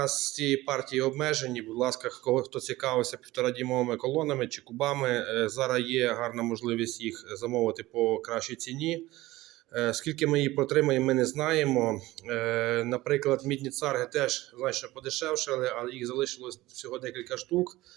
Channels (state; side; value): quieter; left; 18.2 dB